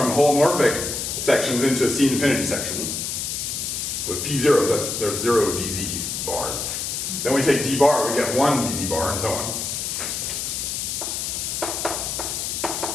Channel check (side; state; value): left; noise; hiss, 3 dB below the sound